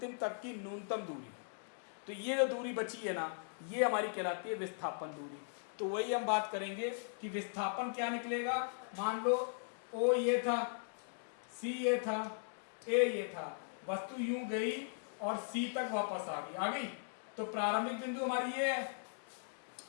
तक की न्यूनतम दूरी, तो ये जो दूरी बची है ना, ये हमारी कहलाती है विस्थापन दूरी। तो वही हम बात करेंगे कि विस्थापन क्या निकलेगा। मान लो ओ ये था, सी ये था, ए ये था, वस्तु यूं गई और सी तक वापस आ गई। तो प्रारंभिक बिंदु हमारी ये है,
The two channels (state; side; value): silent; right; digital silence